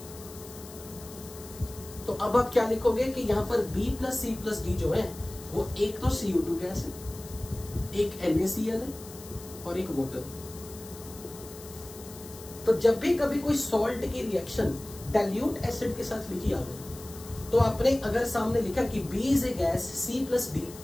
तो अब आप क्या लिखोगे कि यहां पर B+C+D जो है वो एक तो CO2 गैस है, एक NaCl है और एक वाटर। तो जब भी कभी कोई सॉल्ट की रिएक्शन डाइल्यूट एसिड के साथ लिखी आ गई, तो आपने अगर सामने लिखा कि B is a gas C+D,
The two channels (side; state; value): left; noise; hiss, 17 dB below the sound